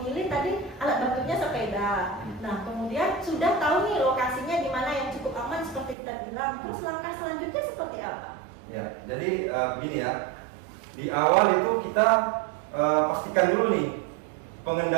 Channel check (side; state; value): left; drops out; at 6.0 s